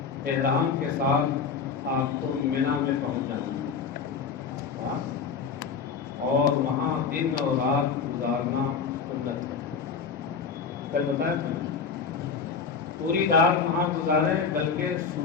احرام کے ساتھ آپ کو منی میں پہنچ جانا ہے، اور وہاں دن اور رات گزارنا سنت ہے۔ کل بتایا تھا میں، پوری رات وہاں گزاریں، بلکہ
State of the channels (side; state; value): right; quieter; 5.8 dB